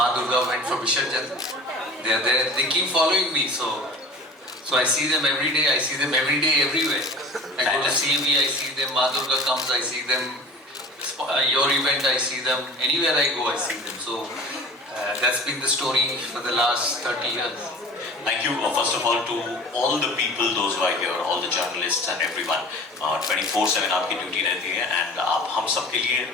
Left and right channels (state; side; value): normal; both; correlation 0.40